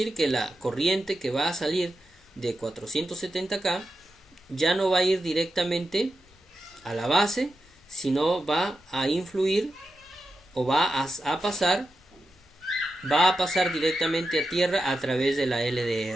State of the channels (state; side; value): normal; both; correlation 0.89